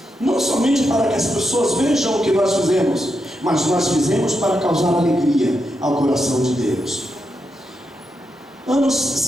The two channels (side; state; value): both; normal; correlation 0.85